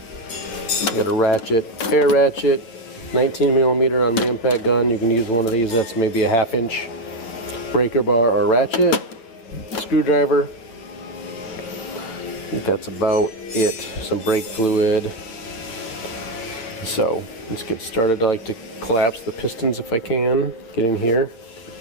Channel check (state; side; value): late; right; 8.7 ms